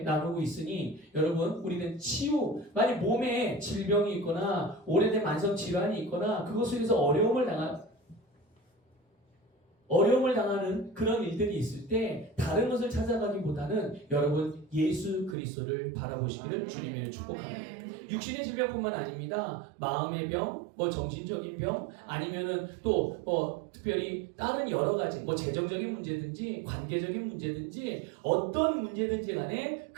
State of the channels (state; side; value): drops out; left; at 15.4 s